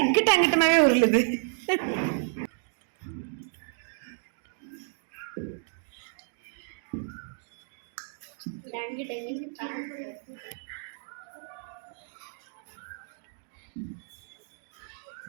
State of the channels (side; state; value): left; silent; digital silence